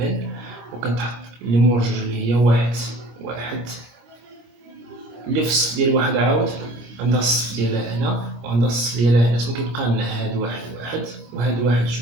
وكتحط اللي مور جوج اللي هي واحد واحد، اللي في الصف ديال واحد عاود عندها الصف ديالها هنا وعندها الصف ديالها هنا. كيبقى لنا هاد واحد واحد وهاد واحد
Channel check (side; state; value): left; late; 26 ms